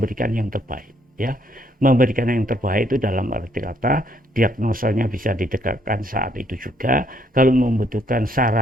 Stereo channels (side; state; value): both; normal; correlation 0.69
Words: yang terbaik, ya. Memberikan yang terbaik itu dalam arti kata diagnosanya bisa ditegakkan saat itu juga. Kalau membutuhkan